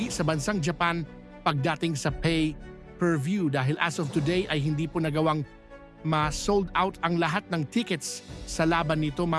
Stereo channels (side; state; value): both; identical; correlation 1.00